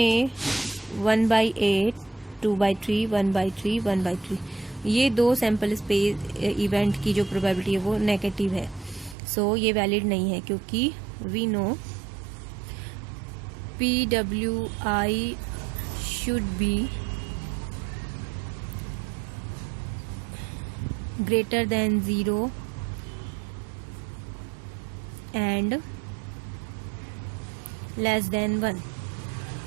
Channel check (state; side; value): drops out; left; at 9.2 s